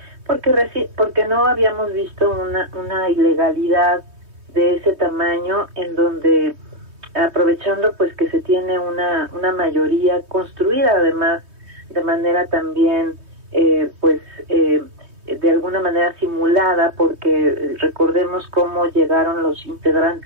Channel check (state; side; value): late; left; 3.2 ms